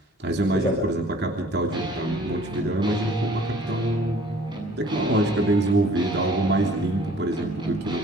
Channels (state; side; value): normal; both; correlation 0.53